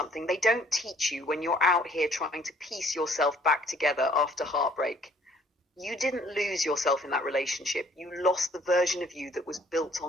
they don't teach you when you're out here trying to piece yourself back together after heartbreak. You didn't lose yourself in that relationship. You lost the version of you that was built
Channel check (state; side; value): normal; both; correlation 0.60